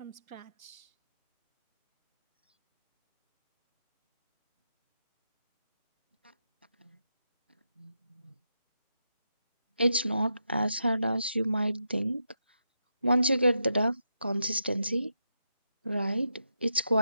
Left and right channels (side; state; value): both; inverted; correlation -0.85